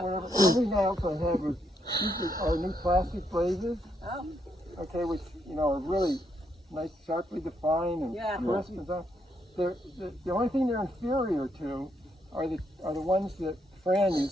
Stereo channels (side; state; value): both; normal; correlation 0.76